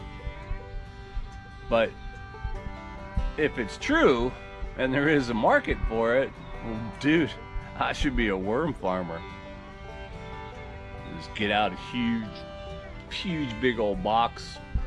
But if it's true and there is a market for it, well, dude, I should be a worm farmer. Just get out a huge big old boxed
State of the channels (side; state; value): both; identical; correlation 1.00